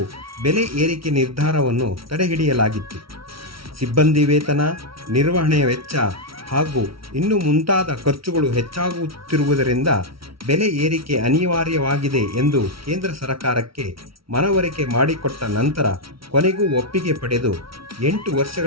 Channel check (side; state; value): left; late; 0.75 ms